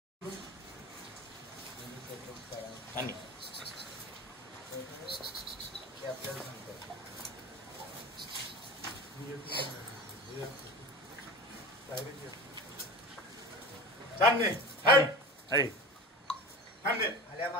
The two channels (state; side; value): normal; both; correlation 0.32